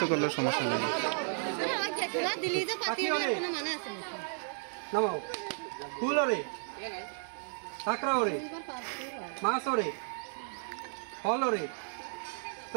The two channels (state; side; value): silent; left; 55 dB below the other